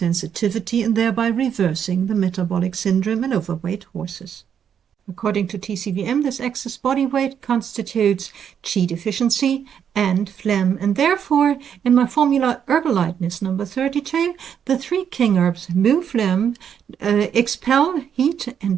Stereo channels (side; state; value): left; quieter; 8.3 dB